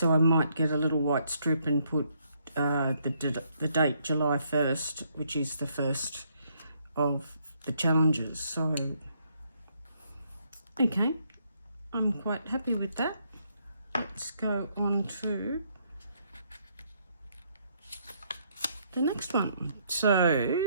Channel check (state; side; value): inverted; both; correlation -0.71